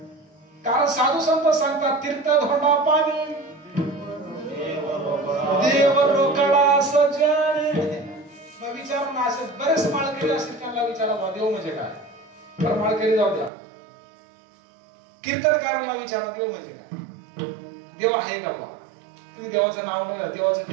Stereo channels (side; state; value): left; drops out; at 13.5 s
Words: कारण साधू संत सांगतात, तीर्थ धोंडा पाणी देव रोकडा सजणे. मग विचार ना, असे बरेच माळकरी असतील, त्यांना विचारा देव म्हणजे काय. तर माळकरी जाऊ द्या, कीर्तनकारांना विचारा देव म्हणजे काय. देव आहे का बा? तुम्ही देवाचं नाव बघा, देवाचं